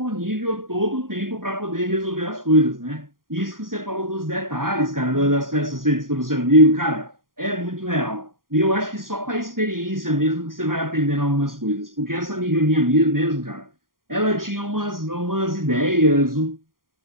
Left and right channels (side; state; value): left; late; 0.91 ms